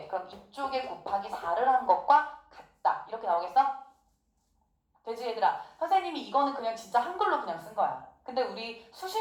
그럼 이쪽에 곱하기 4를 한 것과 같다. 이렇게 나오겠어? 되지 얘들아? 선생님이 이거는 그냥 진짜 한글로 그냥 쓴 거야. 근데 우리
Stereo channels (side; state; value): both; identical; correlation 1.00